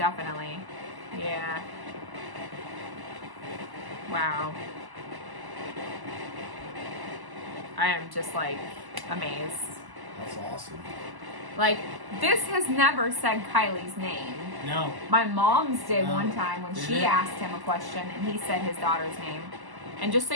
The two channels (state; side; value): late; left; 1.1 ms